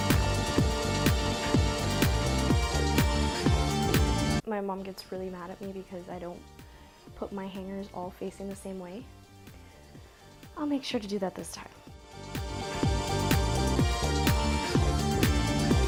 My mom gets really mad at me because I don't put my hangers all facing the same way. I'll make sure to do that this time.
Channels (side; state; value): both; identical; correlation 1.00